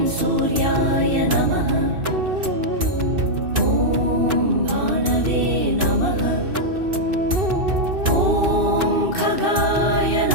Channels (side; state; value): left; late; 2.6 ms